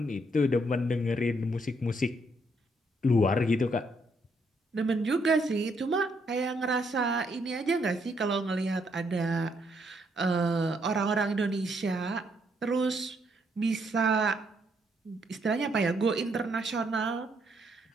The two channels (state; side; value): normal; both; correlation 0.73